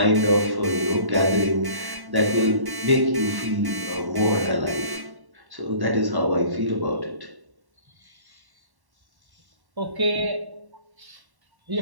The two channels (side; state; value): left; late; 1.1 ms